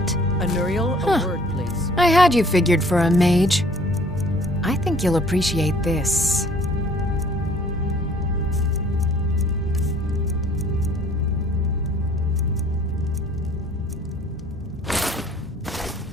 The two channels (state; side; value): normal; both; correlation 0.56